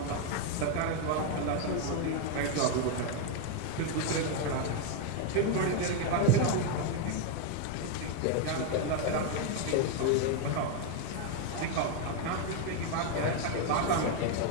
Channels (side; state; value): both; different; correlation 0.01